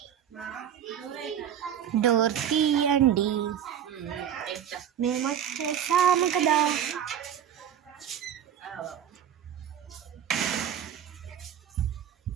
డోర్ తీయండి, మేము వచ్చేసాము కదా.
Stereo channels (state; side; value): quieter; left; 9.5 dB